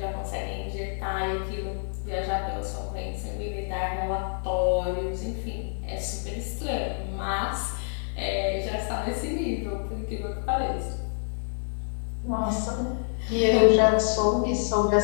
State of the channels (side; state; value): right; silent; digital silence